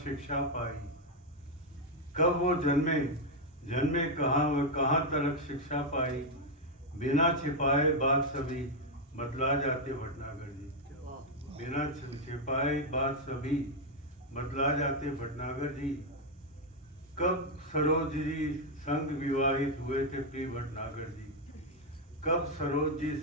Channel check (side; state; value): both; normal; correlation 0.01